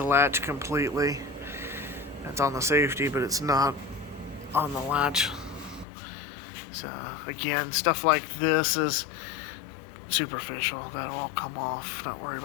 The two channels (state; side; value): drops out; right; at 5.9 s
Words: latch completely. That's on the safety, but it's not on the latch. So again, stuff like this is superficial. That'll all come off. Not worried